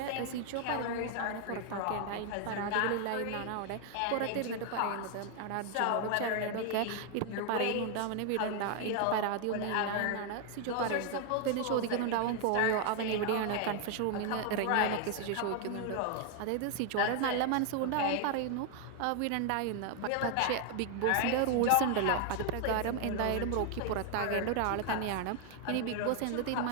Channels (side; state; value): both; different; correlation 0.00